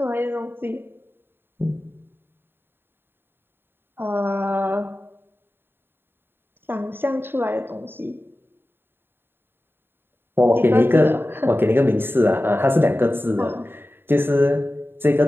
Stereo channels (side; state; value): left; late; 0.10 ms